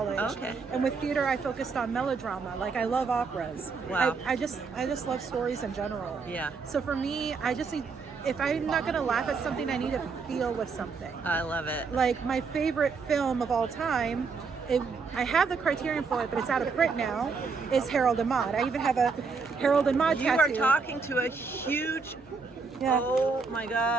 Okay. And with theater, I focused on melodrama. Like I love operas. Wow. I just love stories in general. Yeah. So for me, I just need. If I'm not gonna laugh at something, I need to feel with something. I love it. Like my favorite film of all time. I have the Criterion for it, but it's out of print now. Is Harold and Maude. I even have a Harold and Maude You tattoo. are talking to a huge. Yeah. Oh my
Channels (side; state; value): left; quieter; 4.9 dB